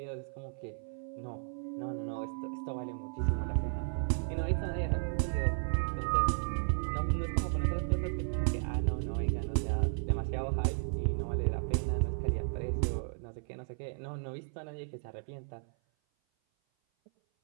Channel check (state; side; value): silent; left; 55 dB below the other